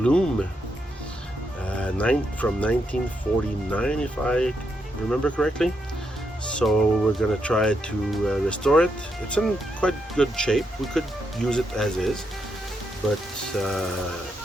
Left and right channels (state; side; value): normal; both; correlation 0.81